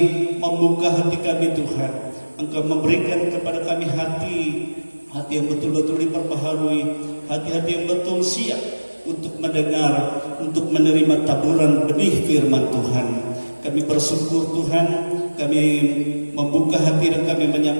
membuka hati kami Tuhan. Engkau memberikan kepada kami hati yang betul-betul diperbaharui, hati-hati yang betul siap untuk mendengar, untuk menerima taburan benih firman Tuhan. Kami bersyukur Tuhan, kami membuka hati dan kami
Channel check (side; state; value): both; inverted; correlation -1.00